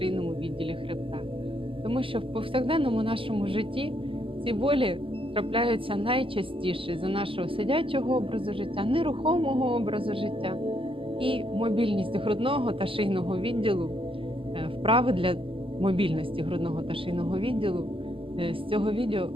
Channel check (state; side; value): late; left; 0.26 ms